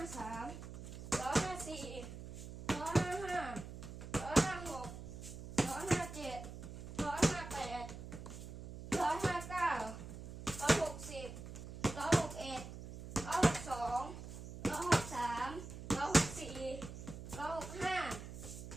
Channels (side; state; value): right; noise; hum, 11 dB below the sound